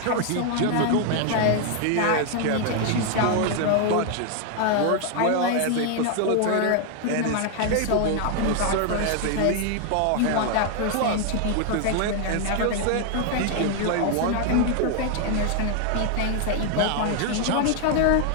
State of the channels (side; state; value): both; different; correlation 0.00